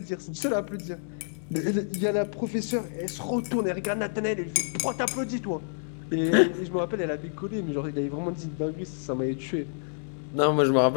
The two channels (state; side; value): silent; right; digital silence